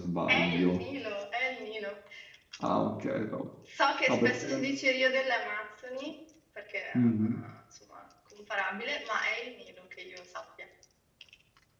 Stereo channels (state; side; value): identical; both; correlation 1.00